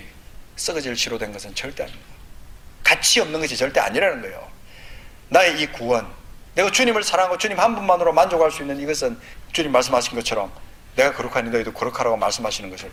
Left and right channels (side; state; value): both; identical; correlation 1.00